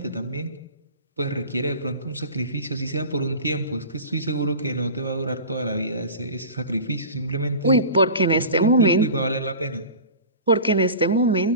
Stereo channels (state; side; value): inverted; both; correlation -0.36